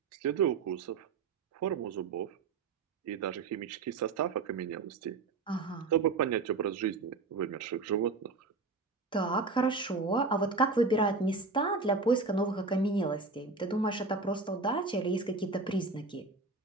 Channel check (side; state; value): left; quieter; 3.9 dB